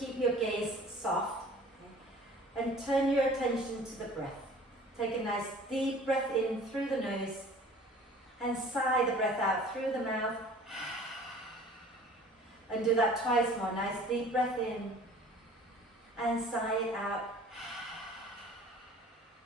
your gaze soft, okay? And turn your attention to the breath. Take a nice deep breath in through the nose and sigh the breath out through the mouth. And do that twice more. Nice deep breath in and sigh it out.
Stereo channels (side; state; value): both; normal; correlation 0.48